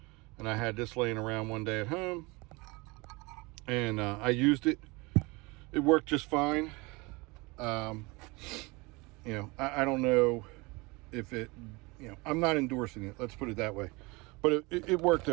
And I had this laying around one day at home, and I used it. It worked just fine. I don't know if it, I'm not endorsing it, let's put it that way. But it worked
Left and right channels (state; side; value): quieter; left; 25.4 dB